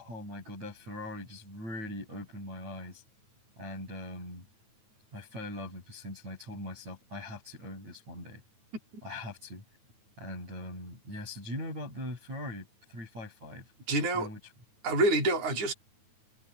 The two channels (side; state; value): left; late; 9.3 ms